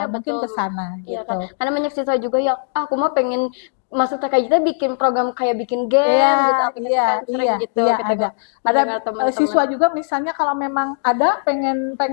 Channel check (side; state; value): right; silent; digital silence